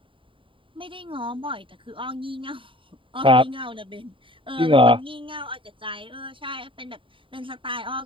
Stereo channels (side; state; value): left; late; 0.25 ms